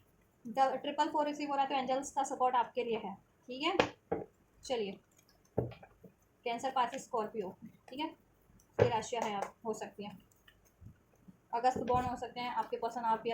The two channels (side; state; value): both; identical; correlation 1.00